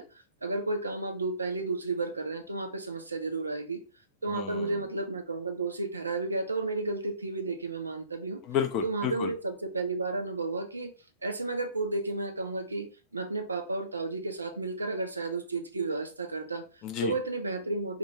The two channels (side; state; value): both; inverted; correlation -0.59